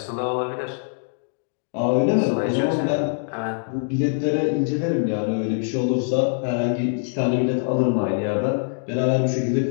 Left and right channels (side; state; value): right; silent; digital silence